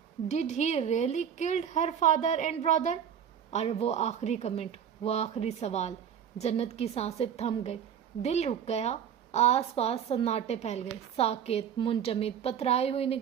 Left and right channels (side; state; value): left; quieter; 8.5 dB